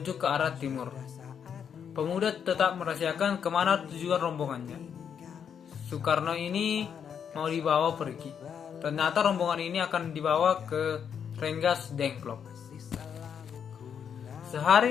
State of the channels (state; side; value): quieter; right; 7.7 dB